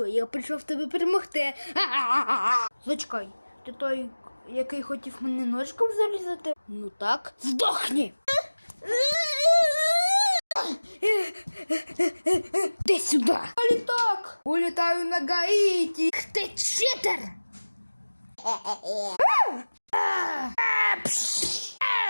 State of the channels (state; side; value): inverted; both; correlation -1.00